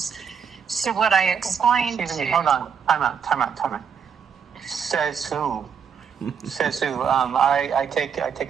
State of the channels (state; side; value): quieter; left; 7.0 dB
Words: So what I explained Excuse me, hold on. Time out. Says who? I